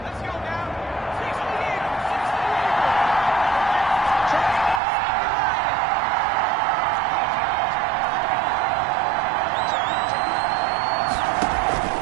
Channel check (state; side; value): drops out; left; at 4.8 s